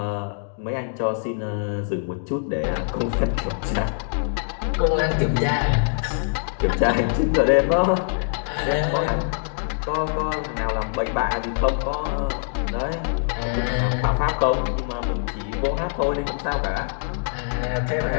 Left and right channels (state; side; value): silent; right; digital silence